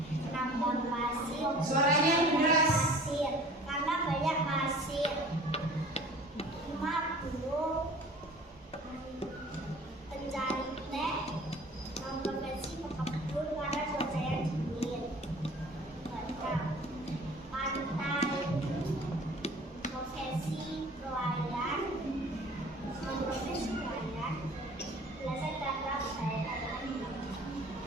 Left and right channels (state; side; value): normal; both; correlation 0.47